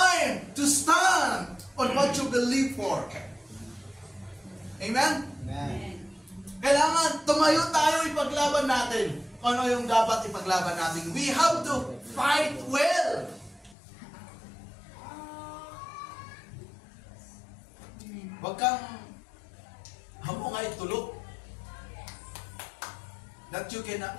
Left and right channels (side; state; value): right; drops out; at 13.8 s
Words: to stand on what you believe for. Amen? Amen. Kailangan tumayo tayo, ipaglaban natin. Ano yung dapat ipaglaban natin? We have to fight well. Huwag kang hamungay tulog that